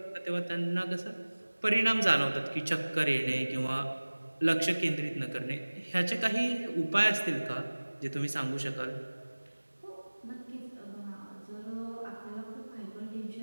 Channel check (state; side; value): inverted; both; correlation -1.00